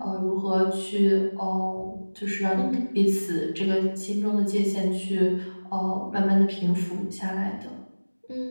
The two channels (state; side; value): inverted; both; correlation -1.00